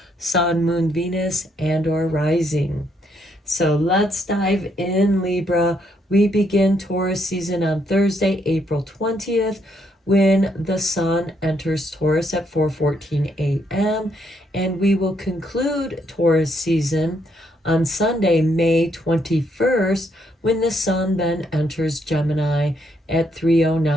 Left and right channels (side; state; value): both; normal; correlation 0.74